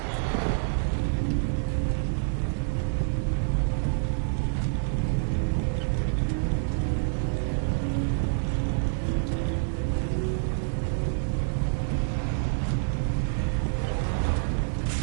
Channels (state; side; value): silent; left; digital silence